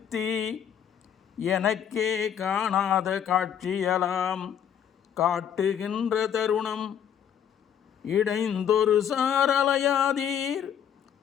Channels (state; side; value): quieter; right; 8.9 dB